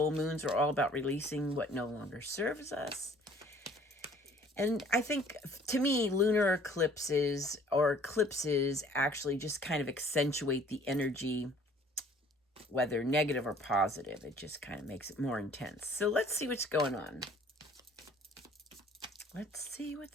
moons are all about releasing what no longer serves us. And I think, to me, lunar eclipses actually just kind of accentuate the energy, whether negative or positive. It just kind of makes it more intense. So let's see what's going on. Let's see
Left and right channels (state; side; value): normal; both; correlation 0.55